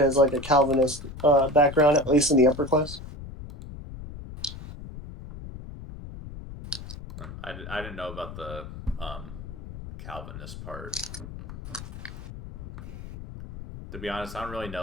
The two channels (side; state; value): left; noise; rumble, 12 dB below the sound